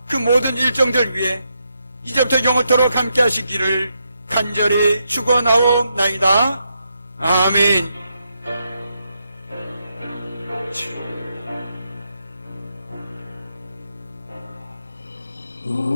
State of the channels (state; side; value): inverted; both; correlation -0.82